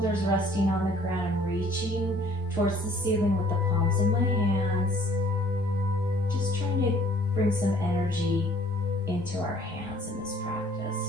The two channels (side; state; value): both; normal; correlation 0.57